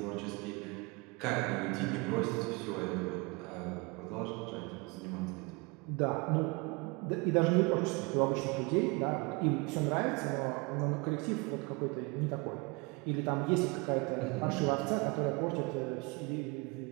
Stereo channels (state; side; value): quieter; left; 28.2 dB